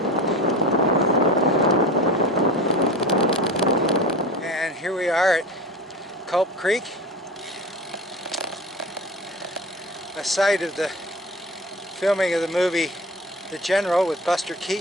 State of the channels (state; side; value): normal; both; correlation 0.32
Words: Here we are at Culp Creek, a site of the filming of the movie The General with Buster